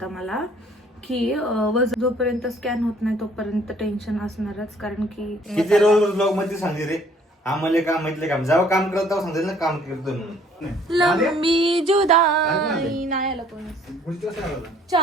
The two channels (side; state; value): both; normal; correlation 0.59